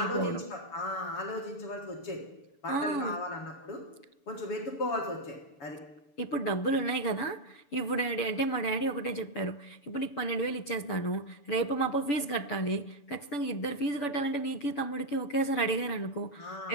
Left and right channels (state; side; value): late; right; 6.9 ms